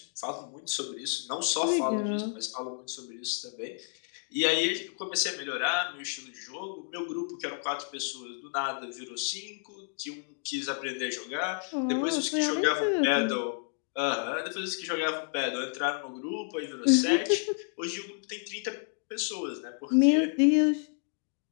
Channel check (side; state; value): right; silent; 57 dB below the other